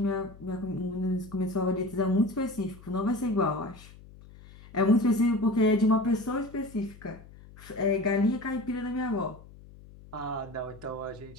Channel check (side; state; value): left; noise; hum, 20 dB below the sound